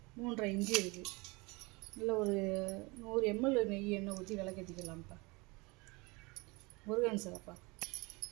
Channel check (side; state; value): left; quieter; 25.8 dB